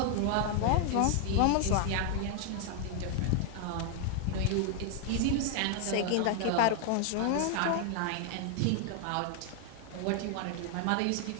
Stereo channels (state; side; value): different; both; correlation 0.00